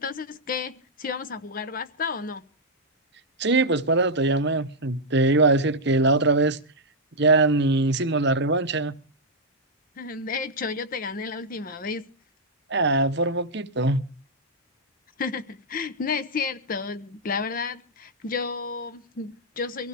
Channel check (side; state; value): both; normal; correlation -0.04